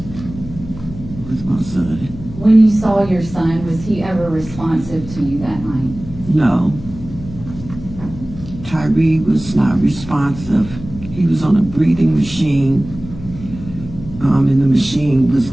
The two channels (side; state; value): left; noise; hum, 13 dB below the sound